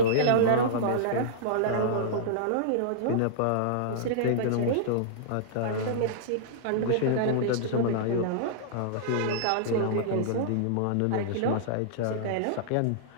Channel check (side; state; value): both; different; correlation -0.02